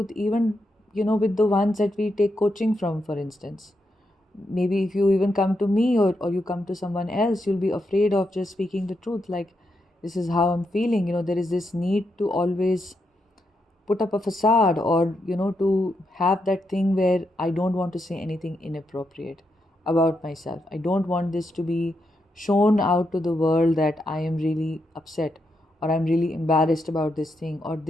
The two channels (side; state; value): both; normal; correlation 0.83